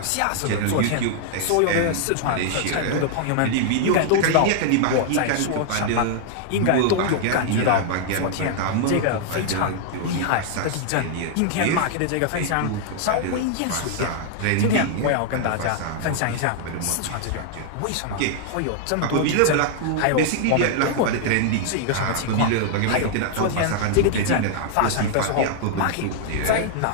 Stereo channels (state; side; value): different; both; correlation -0.01